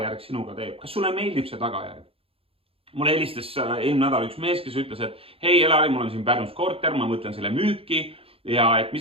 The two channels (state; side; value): late; left; 0.27 ms